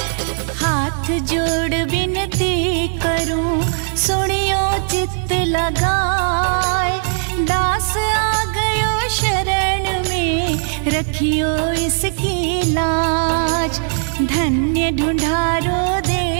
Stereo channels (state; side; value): silent; left; 56 dB below the other